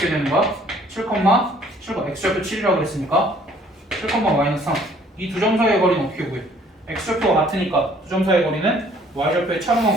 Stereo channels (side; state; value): both; normal; correlation 0.59